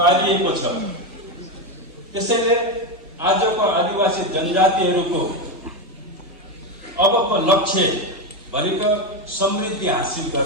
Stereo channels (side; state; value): both; normal; correlation 0.12